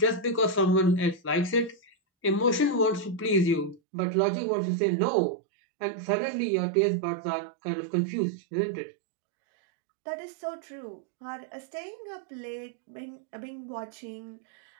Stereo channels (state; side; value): drops out; left; at 3.8 s